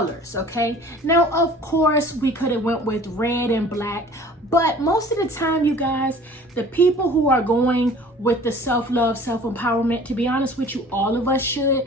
okay? Now, of course, we could have went with red and black, but most of the time, you guys, the people who are going with the self-love, self-empowerment, to be honest with you, all of us should,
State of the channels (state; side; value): normal; both; correlation 0.47